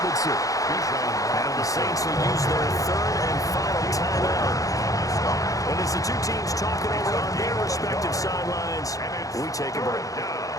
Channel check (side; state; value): right; late; 0.17 ms